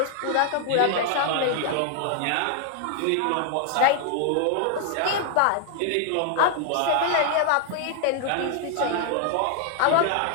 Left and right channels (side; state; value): both; different; correlation 0.00